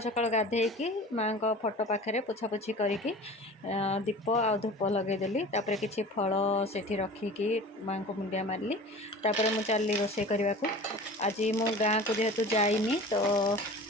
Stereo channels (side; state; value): both; normal; correlation 0.39